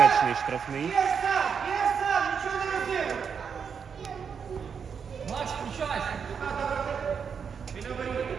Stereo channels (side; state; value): left; quieter; 6.6 dB